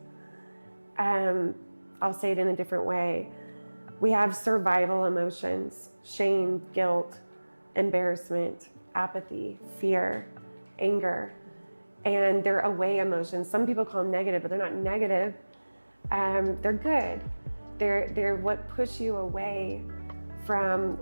I'll say it in a different way. We have survival emotions: shame, guilt, embarrassment, apathy, fear, anger. And they're away emotions. Some people call them negative, but they're not negative. They're good. They're what push you away from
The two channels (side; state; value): both; inverted; correlation -1.00